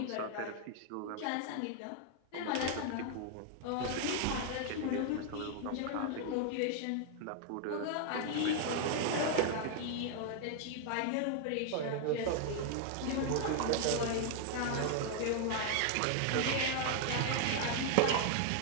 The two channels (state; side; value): different; both; correlation 0.00